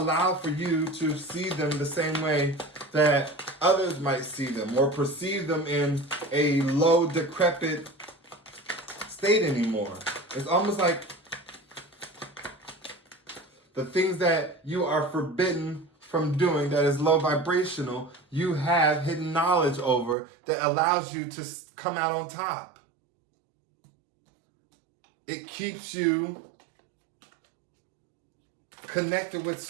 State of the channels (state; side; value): drops out; left; at 20.2 s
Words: for you to see them the same way that others might see them or perceive them in a low, decrepit state anymore. It's almost like the things that you are forbidden from doing that is low vibrational, you have hidden knowledge over that allows you to come out on top. It keeps you connected with